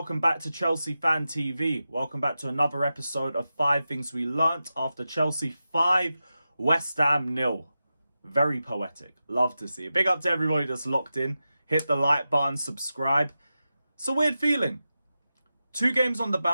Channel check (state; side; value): inverted; both; correlation -0.92